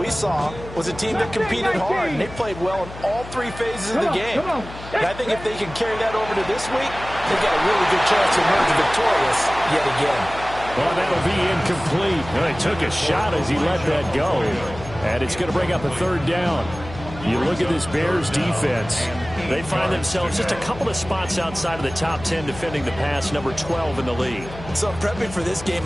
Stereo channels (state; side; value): noise; left; hum, 14 dB below the sound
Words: saw was a team that competed hard, and they played well in all 3 phases of the game. And I think if they can carry that over to this week, they've got a really good chance to emerge victorious yet again. Well, that'll be incomplete. Well, he took a shot as he let that go. And it's going to bring up a 3rd down. You look at this Bears defense. They find themselves just a couple of spots outside of the top 10 defending the pass, number 12 in the league. So prepping for this game,